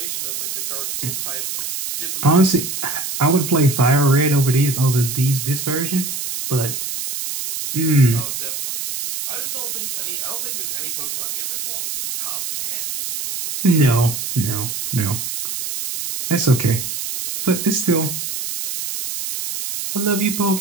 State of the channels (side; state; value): right; noise; hiss, 5 dB below the sound